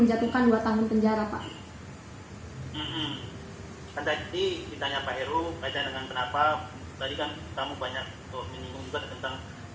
menjatuhkan 2 tahun penjara Pak. Kan tadi ditanya Pak Heru kaitan dengan kenapa tadi kan kamu banyak menyinggung juga tentang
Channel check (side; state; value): both; identical; correlation 1.00